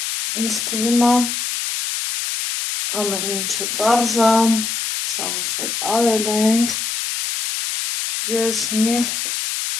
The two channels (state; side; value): noise; left; hiss, 2 dB below the sound